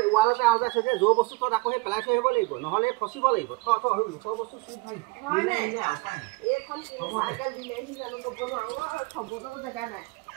ৱালতে আওঁজাই থৈ দিয়ে যৌ বস্তু তত আকৌ সেই পেলাই থৈ আহিব লাগিব নহ'লে ফচিব লাগিব লোকৰ বস্তু চুই জেগা নাই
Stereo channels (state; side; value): quieter; left; 25.5 dB